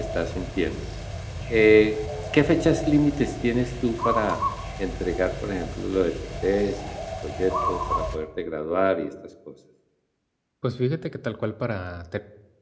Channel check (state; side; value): identical; both; correlation 1.00